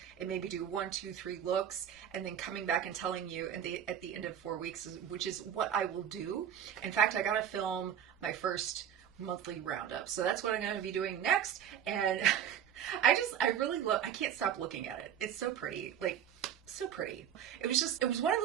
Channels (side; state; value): left; quieter; 9.3 dB